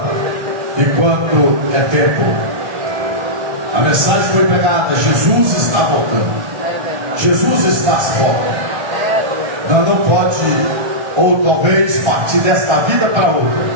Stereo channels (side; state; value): left; late; 1.3 ms